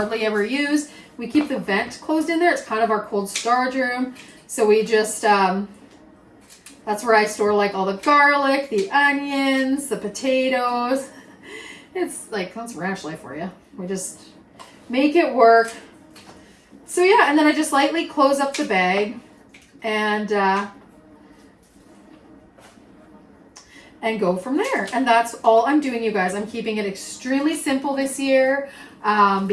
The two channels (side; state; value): both; identical; correlation 1.00